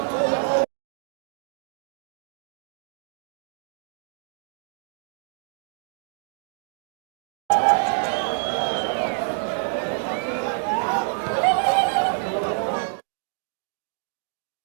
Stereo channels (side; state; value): left; silent; digital silence